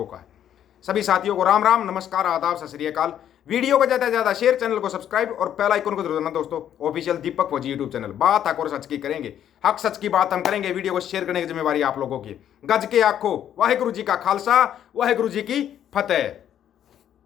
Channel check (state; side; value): quieter; right; 10.2 dB